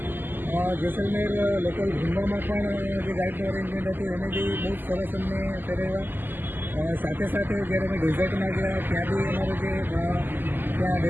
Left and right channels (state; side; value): late; left; 0.091 ms